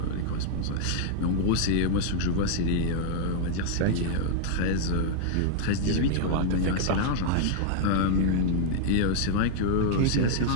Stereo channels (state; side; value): different; both; correlation 0.00